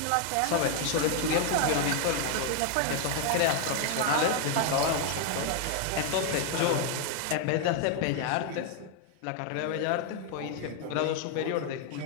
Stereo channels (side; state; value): both; different; correlation 0.00